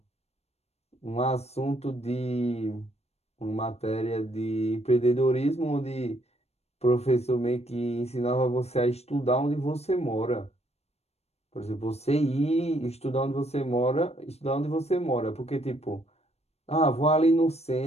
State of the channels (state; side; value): late; right; 0.31 ms